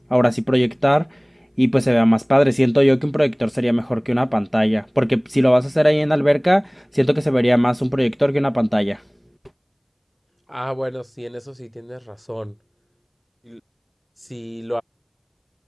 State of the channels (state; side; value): identical; both; correlation 1.00